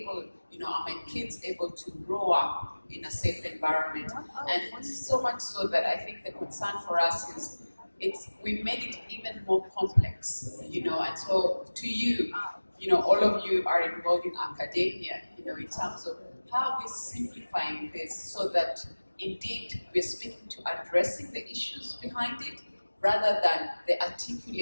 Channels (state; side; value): inverted; both; correlation -1.00